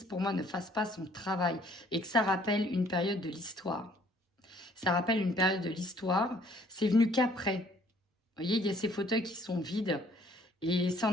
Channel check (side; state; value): both; normal; correlation 0.60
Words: pour moi, ne fasse pas son travail et que ça rappelle une période de l'histoire. Ça rappelle une période de l'histoire. C'est venu qu'après. Vous voyez, il y a ces fauteuils qui sont vides. Et c'est